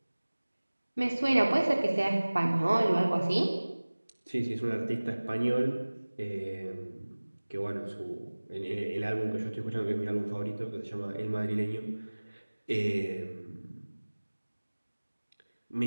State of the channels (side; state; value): both; inverted; correlation -1.00